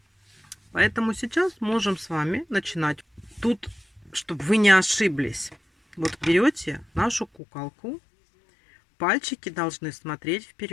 Поэтому сейчас можем с вами начинать. Тут, чтобы вы не ошиблись, вот берете нашу куколку, пальчики должны смотреть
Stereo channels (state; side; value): drops out; right; at 7.3 s